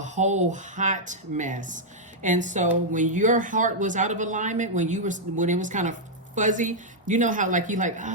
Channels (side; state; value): both; normal; correlation -0.05